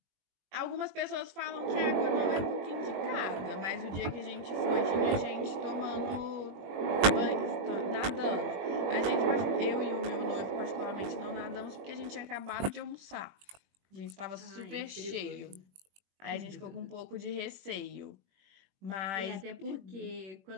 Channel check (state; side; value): late; left; 21 ms